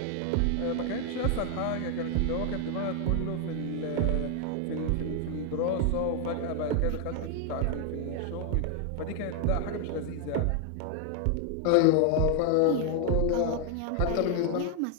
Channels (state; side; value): different; both; correlation 0.00